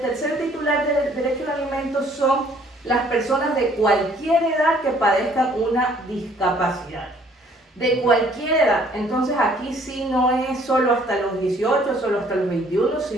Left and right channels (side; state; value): both; normal; correlation 0.60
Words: tercer titular del derecho a alimentos son las personas de cualquier edad que padezcan una discapacidad. De cualquier edad. Entonces aquí sí no es solo hasta los 18, solo hasta los 21,